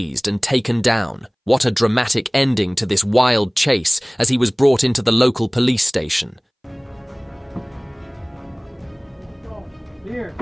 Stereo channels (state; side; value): identical; both; correlation 1.00